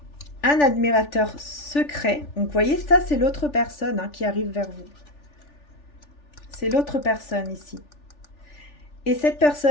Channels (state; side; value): late; right; 3.4 ms